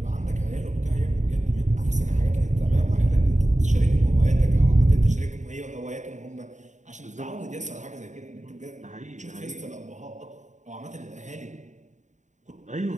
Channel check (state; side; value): late; left; 0.35 ms